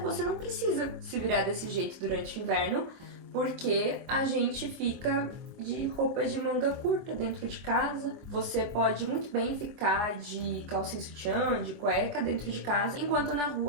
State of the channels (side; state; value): left; late; 24 ms